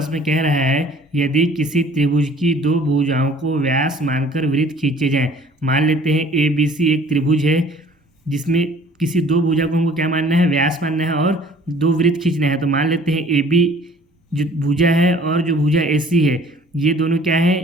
में कह रहा है, यदि किसी त्रिभुज की दो भुजाओं को व्यास मानकर वृत्त खींचे जाएं। मान लेते हैं ए बी सी एक त्रिभुज है जिसमें किसी दो भुजा को हमको क्या मानना है, व्यास मानना है और दो वृत्त खींचना है। तो मान लेते हैं ए बी जो भुजा है और जो भुजा ए सी है, ये दोनों क्या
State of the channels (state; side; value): normal; both; correlation 0.52